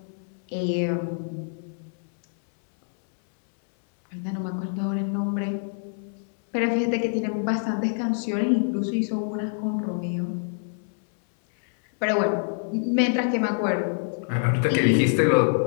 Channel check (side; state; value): right; silent; 61 dB below the other